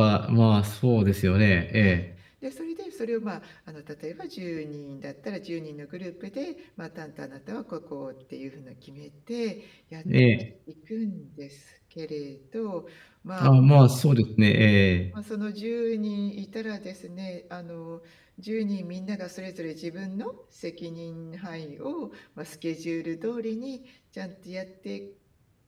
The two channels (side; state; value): both; identical; correlation 1.00